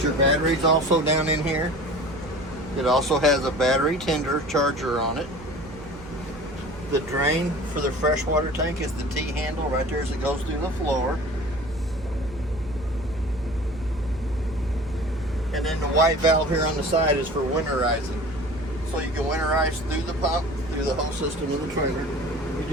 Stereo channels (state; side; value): noise; right; hum, 17 dB below the sound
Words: your battery's also down in here. It also has a battery tender charger on it. The drain for the freshwater tank is the T-handle right there as it goes through the floor. And then the white valve here on the side is for winterizing. So you can winterize through the pump, through the whole system of the trailer.